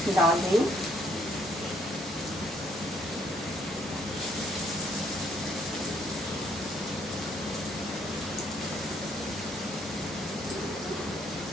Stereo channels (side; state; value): both; normal; correlation 0.68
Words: डाल रही हूँ।